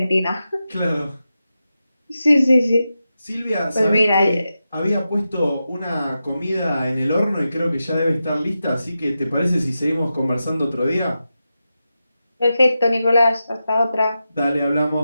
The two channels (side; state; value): both; inverted; correlation -0.90